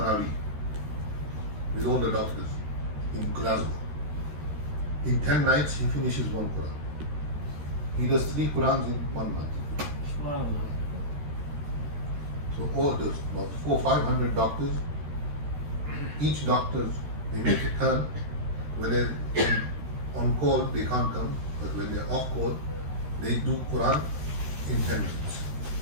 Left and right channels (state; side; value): late; left; 13 ms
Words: with all the doctors in Glasgow. In 10 nights he finishes one Quran. He does 3 Qurans in 1 month. So all those, about 400-500 doctors, each doctor, they make a turn. When they're on call, they can't come, but when they're off call, they do Quran in 10 minutes.